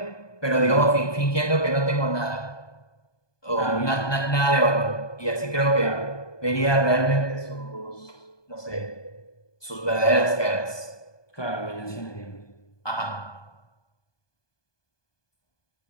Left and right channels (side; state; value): right; late; 1.2 ms